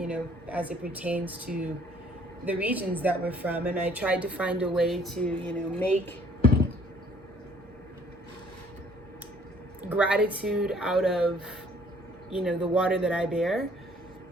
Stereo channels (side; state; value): both; normal; correlation 0.59